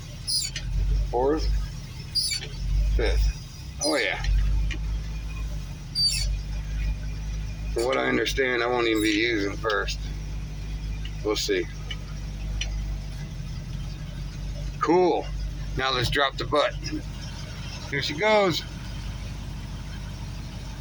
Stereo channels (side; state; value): both; identical; correlation 1.00